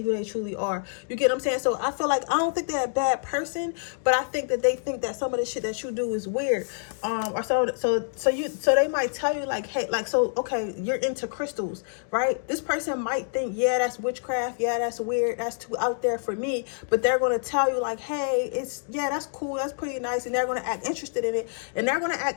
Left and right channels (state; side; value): silent; right; digital silence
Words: who they truly are. You get what I'm saying? So I feel like I don't think they're a bad person, but I think that they think that some of the shit that you do is weird. Or so they might tell you like, hey, like, so okay, you're into crystals, right? This person might think, yeah, that's witchcraft, yeah, that's weird, that's too out there for me, but they're going to tell you like, hey, yeah, that's cool, that's pretty nice, and they're going to act interested in it, and they're going to